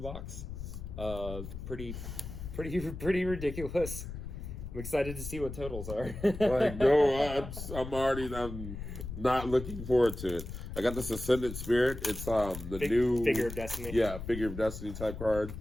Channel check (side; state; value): left; noise; rumble, 9 dB below the sound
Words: Pretty ridiculous. I'm excited to see what totals are. Like, no, I'm not looking forward to it. I got this Ascendant Spirit. It's the new Figure of Destiny. Yeah, Figure of Destiny type card